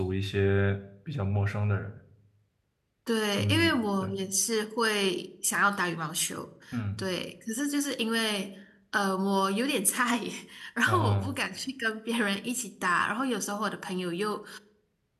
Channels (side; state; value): both; identical; correlation 1.00